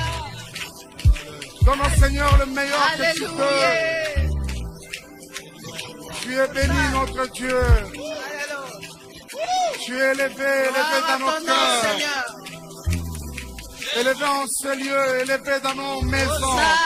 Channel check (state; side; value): identical; both; correlation 1.00